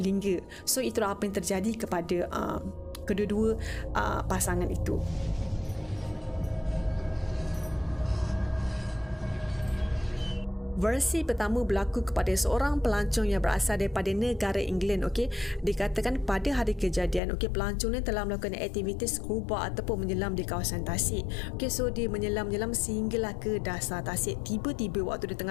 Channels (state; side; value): drops out; right; at 17.2 s